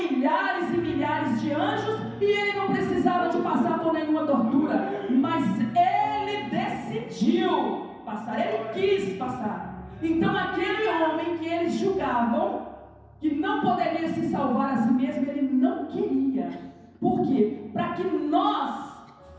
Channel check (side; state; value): both; identical; correlation 1.00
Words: e milhares de anjos e ele não precisava de passar por nenhuma tortura. Mas ele decidiu passar, ele quis passar. Então aquele homem que eles julgavam que não poderia se salvar a si mesmo, ele não queria. Por quê? Para que nós